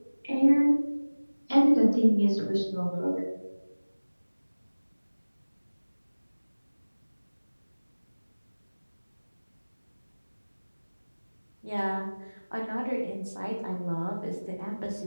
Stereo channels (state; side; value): inverted; both; correlation -1.00